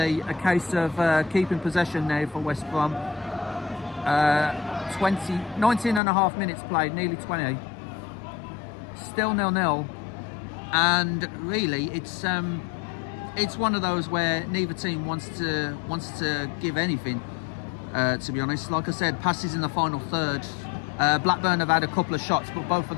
a case of keeping possession now for West Brom. 19 and a half minutes played, nearly 20. Still 0-0. And really, it's one of those where neither team wants to give anything. To be honest, like I said, passes in the final third. Blackburn have had a couple of shots, but both of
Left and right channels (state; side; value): drops out; right; at 6.0 s